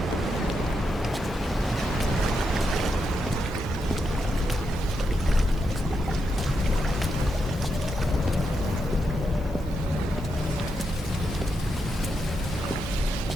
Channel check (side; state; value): both; normal; correlation 0.84